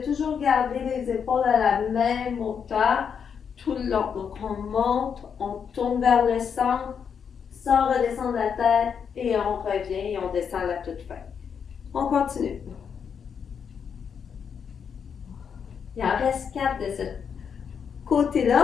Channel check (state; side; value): quieter; right; 7.0 dB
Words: toujours garder les épaules à la même hauteur tout le long. Donc, on monte, on tourne vers le centre, sans redescendre la tête et on revient et on descend à la toute fin. On continue. Il en reste 4 de ce